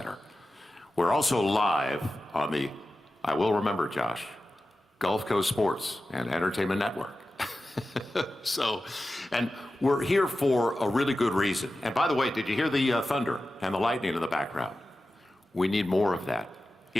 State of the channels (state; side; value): normal; both; correlation 0.94